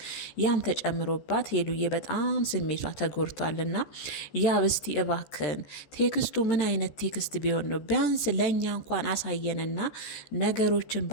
ያም ተጨምሮባት ሄሉዬ በጣም ስሜቷ ተጎድቷልና ያብ እስቲ እባክን ቴክስቱ ምን አይነት ቴክስት ቢሆን ነው? ቢያንስ ለእኛ እንኳን አሳየንና ነገሮችን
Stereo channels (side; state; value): right; late; 14 ms